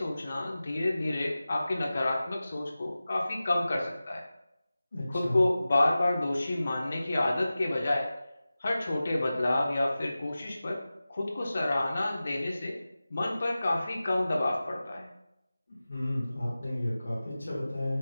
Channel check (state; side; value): inverted; both; correlation -0.96